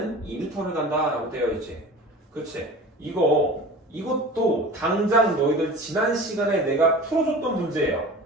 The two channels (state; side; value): normal; both; correlation 0.38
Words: 2m를 간다 라고 되어 있지. 그치? 이것도 당장 너희들 지난 시간에 내가 풀어줬던 문제예요.